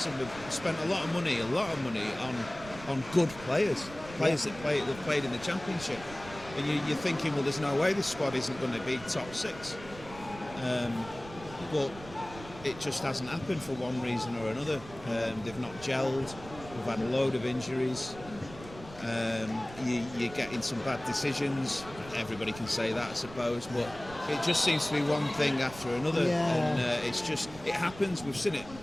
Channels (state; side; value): noise; right; rumble, 16 dB below the sound